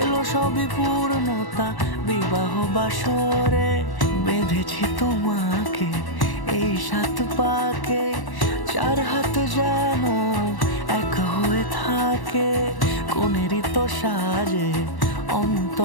সবই পূর্ণতা বিবাহ বাসরে। বেঁধেছি তোমাকে এই 7 পাকে, 4 হাত যেন এক হয়ে থাকে। কোনেরই তো সাজে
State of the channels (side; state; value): right; late; 1.1 ms